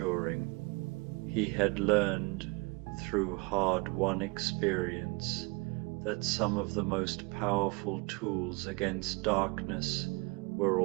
He had learned, through hard-won experience, that some of the most powerful tools against darkness were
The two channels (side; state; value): left; quieter; 28.3 dB